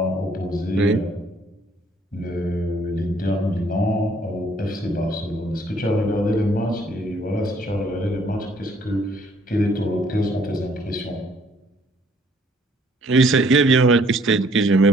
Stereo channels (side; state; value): both; normal; correlation 0.62